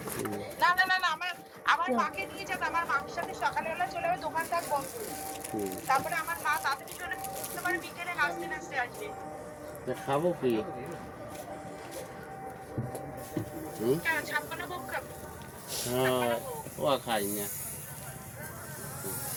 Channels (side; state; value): both; identical; correlation 1.00